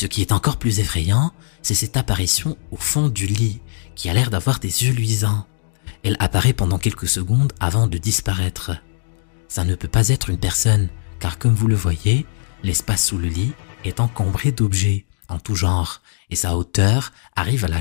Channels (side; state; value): right; silent; digital silence